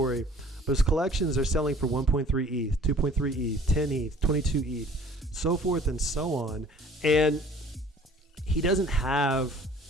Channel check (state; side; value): normal; both; correlation 0.52